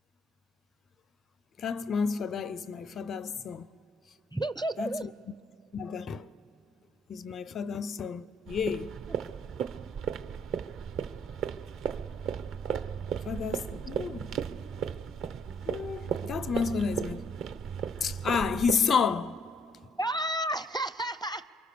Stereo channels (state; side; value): normal; both; correlation 0.67